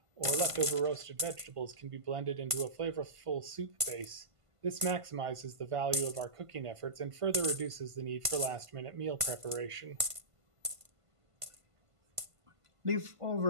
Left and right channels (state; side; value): late; left; 1.5 ms